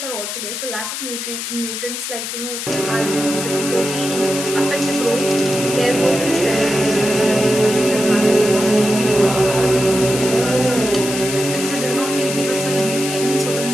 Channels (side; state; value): left; noise; hiss, 5 dB below the sound